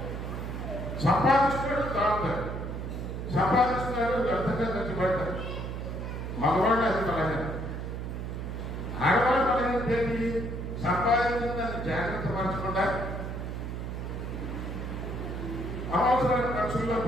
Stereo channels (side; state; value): right; noise; hum, 5 dB below the sound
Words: సంపాదిస్తున్నాడు, తాగుతాడు, సంపాదిస్తున్నాడు, వ్యర్థంగా ఖర్చు పెడతాడు. మగవాళ్ళు అది బలహీన. ఆడవాళ్ళు బలహీన ఏంటి? సంపాదించిన దాన్ని జాగ్రత్త పరచకుండా అవసరమైన ఖర్చుల్లో